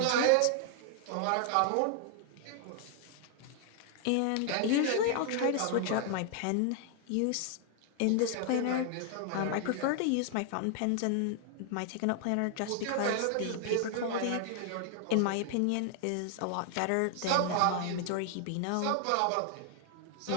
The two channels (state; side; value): different; both; correlation 0.00